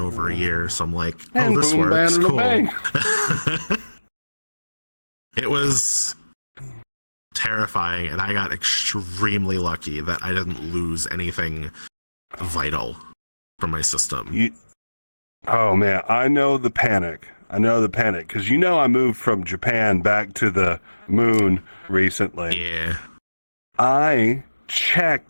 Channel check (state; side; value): inverted; both; correlation -1.00